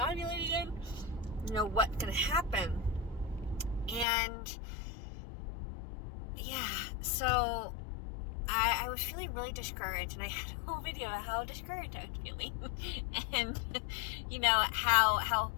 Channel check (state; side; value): drops out; right; at 4.0 s